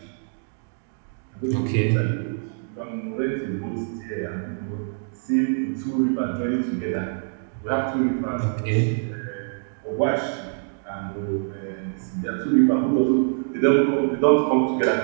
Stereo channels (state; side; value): silent; left; digital silence